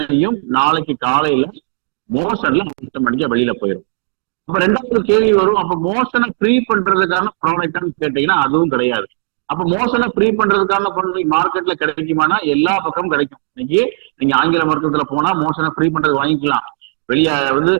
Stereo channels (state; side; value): silent; left; digital silence